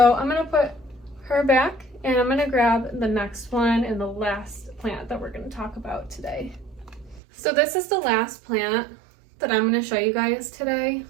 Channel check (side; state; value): left; drops out; at 7.2 s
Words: I'm gonna put her back, and I'm gonna grab the next one and the last plant that we're gonna talk about today. So this is the last plant that I'm gonna show you guys today.